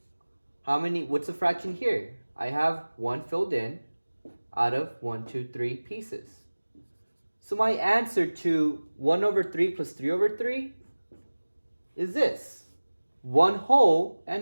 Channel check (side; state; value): both; inverted; correlation -1.00